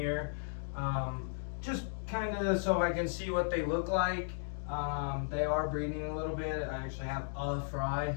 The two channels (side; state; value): right; silent; digital silence